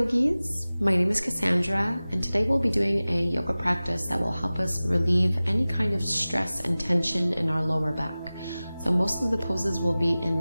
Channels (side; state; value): both; inverted; correlation -0.98